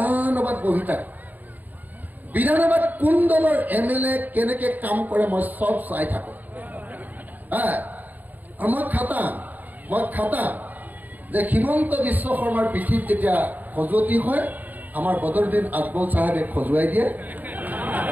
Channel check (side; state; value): left; late; 0.083 ms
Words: বহি থাকো বিধানসভাত কোন দলৰ এমএলএ কেনেকে কাম কৰে মই সব চাই থাকো মই খাটাম যে হিমন্ত বিশ্ব শৰ্মাৰ পিঠিত যেতিয়া খজুৱতি হয় আমাৰ বদৰুদ্দিন আজমল সাহেবে খজুৱাই দিয়ে